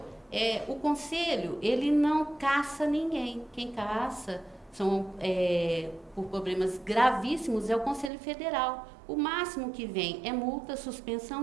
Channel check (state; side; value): drops out; left; at 8.1 s